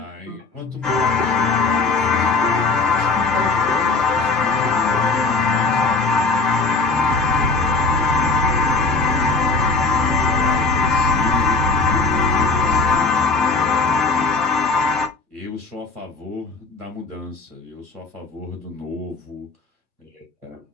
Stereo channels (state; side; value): quieter; right; 3.9 dB